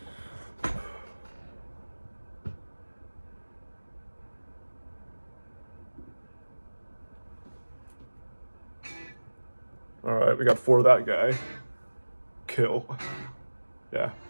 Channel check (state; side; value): inverted; both; correlation -1.00